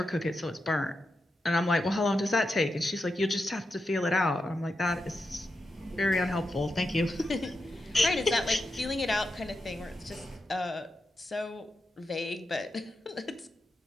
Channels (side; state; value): both; normal; correlation 0.87